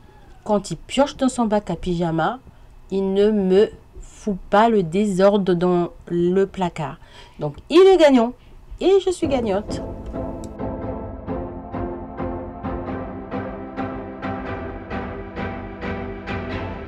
Quand il pioche dans son bac à pyjama, il ne me fout pas le désordre dans le placard. Donc, il est gagnant et je suis gagnante.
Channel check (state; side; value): identical; both; correlation 1.00